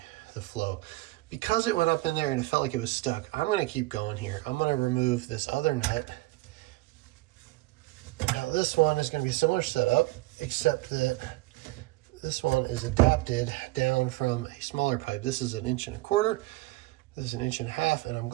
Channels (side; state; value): left; quieter; 20.2 dB